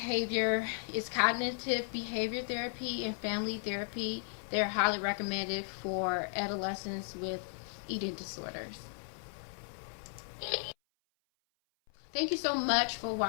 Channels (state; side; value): silent; right; 54 dB below the other